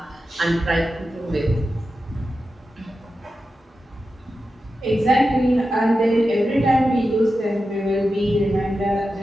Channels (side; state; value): both; normal; correlation 0.91